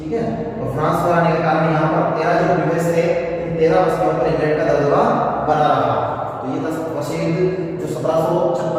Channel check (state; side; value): identical; both; correlation 1.00